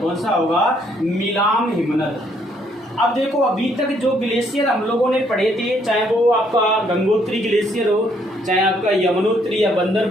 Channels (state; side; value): normal; both; correlation 0.68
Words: सा होगा, मिलाम हिमनद। अब देखो अभी तक जो ग्लेशियर हम लोगों ने पढ़े थे, चाहे वो आपका गंगोत्री ग्लेशियर हो, चाहे आपका यमुनोत्री या